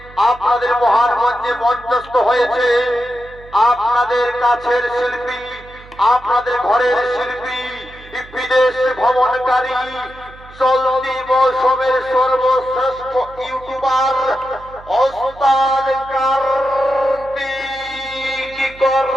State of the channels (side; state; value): right; noise; hum, 21 dB below the sound